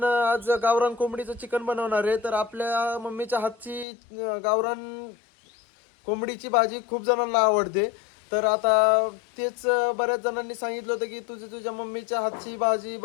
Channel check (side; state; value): right; drops out; at 3.9 s